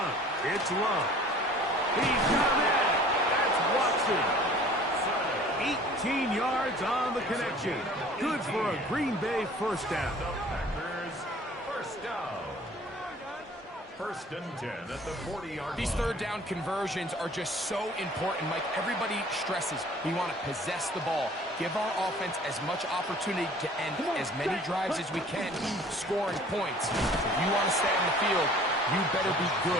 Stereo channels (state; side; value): normal; both; correlation 0.49